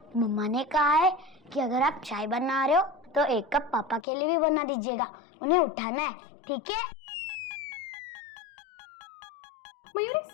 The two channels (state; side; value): drops out; right; at 4.0 s